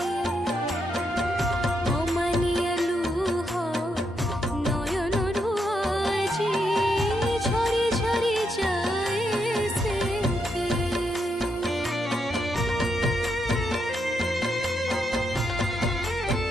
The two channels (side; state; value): both; normal; correlation 0.80